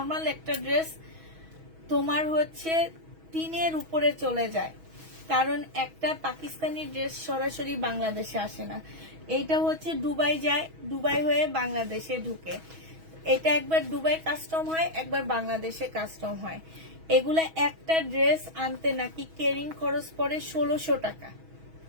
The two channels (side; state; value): left; late; 6.2 ms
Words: একটা ড্রেস তোমার হচ্ছে 3 উপরে চলে যায়, কারণ একটা পাকিস্তানি ড্রেস সরাসরি বাংলাদেশে আসে না। এইটা হচ্ছে দুবাই যায়, দুবাই হয়ে বাংলাদেশে ঢুকে। এটা একবার দুবাই কাস্টম হয়, একবার বাংলাদেশে কাস্টম হয়। এগুলা একটা ড্রেস আনতে নাকি ক্যারিং খরচ পড়ে 1600 টাকা।